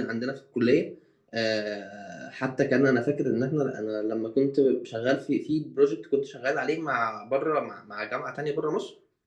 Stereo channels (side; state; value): both; identical; correlation 1.00